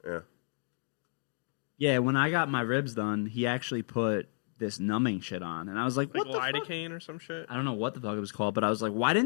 Yeah. Yeah, when I got my ribs done, he actually put this numbing shit on, and I was like, "What the fuck?" Lidocaine or some shit. I don't know what the fuck it was called, but I was like,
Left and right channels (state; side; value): silent; right; 55 dB below the other